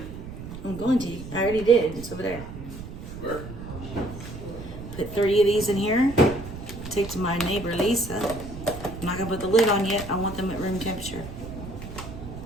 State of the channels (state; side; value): noise; right; rumble, 11 dB below the sound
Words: I'm going to. I already did. It's over there. Where? Put 30 of these in here. Take to my neighbor Lisa. I'm not gonna put the lid on yet. I want them at room temperature.